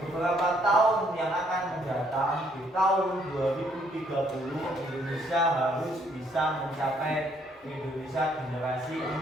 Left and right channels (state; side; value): normal; both; correlation 0.68